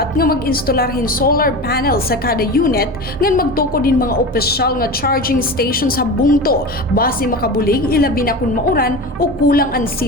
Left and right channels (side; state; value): both; normal; correlation 0.28